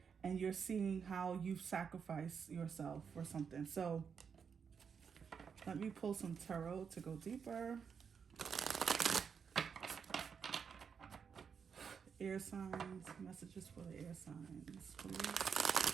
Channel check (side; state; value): left; quieter; 6.5 dB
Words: and you're seeing how you've sacrificed yourself for something. So let me pull some tarot to go deeper. Air signs, messages for the air signs, please.